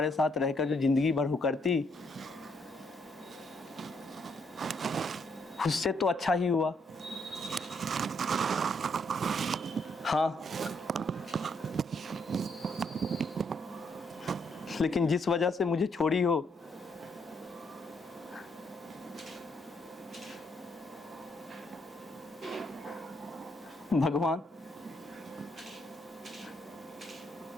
साथ रहकर जो जिंदगी भर हुकरती, उससे तो अच्छा ही हुआ। हाँ, लेकिन जिस वजह से मुझे छोड़ी हो, भगवान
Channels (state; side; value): normal; both; correlation 0.73